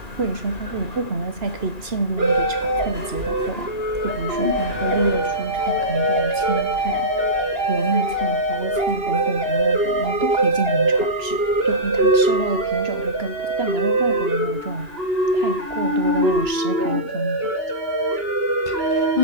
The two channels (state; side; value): late; left; 3.0 ms